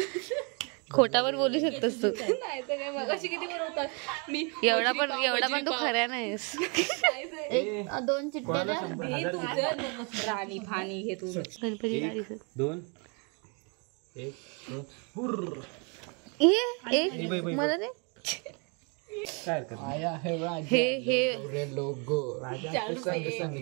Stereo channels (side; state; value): left; quieter; 34.6 dB